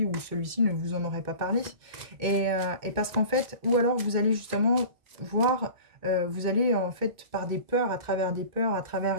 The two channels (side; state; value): left; late; 2.2 ms